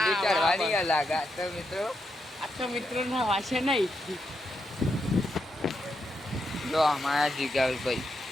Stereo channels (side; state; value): both; normal; correlation 0.83